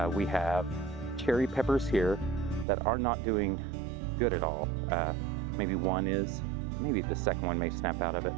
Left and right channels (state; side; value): drops out; left; at 2.7 s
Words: We have cherry peppers here that are not doing good at all. Maybe one is, maybe the second one may snap out of it.